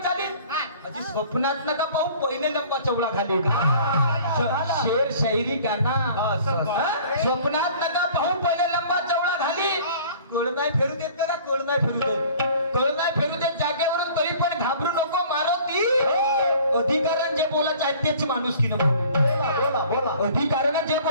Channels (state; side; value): inverted; both; correlation -0.49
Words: अजी स्वप्नात नका पाहू पहिले लंबा चवळा घाले. शेर शायरी गाना. स्वप्नात नका पाहू पहिले लंबा चवळा घाली. कळ नाही फेरू देत का? कळ नाही फेरू देत, कळ नाही फेरू देत जागेवरून. तरी पण घाबरू नको, मारुती. अधिकारानं जे बोलायचं आहे तेच माणुसकीनं बोलू. बोला बोला, अधिकारानं जे